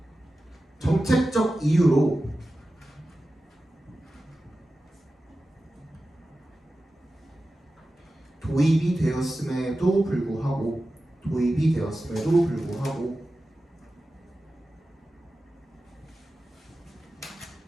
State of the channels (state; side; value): normal; both; correlation 0.94